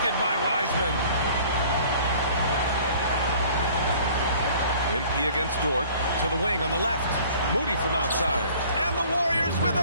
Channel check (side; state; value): both; inverted; correlation -0.51